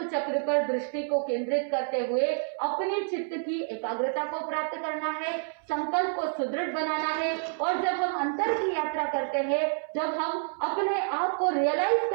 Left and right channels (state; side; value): silent; left; 59 dB below the other